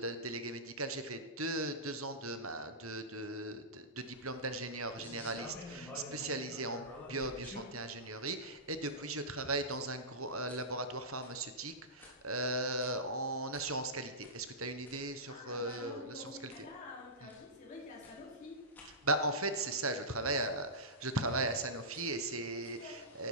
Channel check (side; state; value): both; normal; correlation -0.18